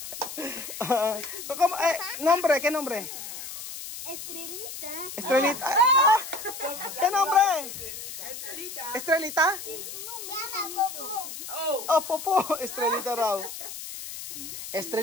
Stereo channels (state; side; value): noise; left; hiss, 9 dB below the sound